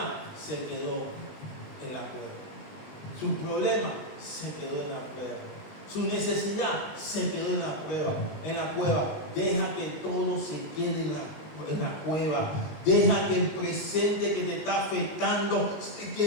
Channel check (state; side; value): late; right; 19 ms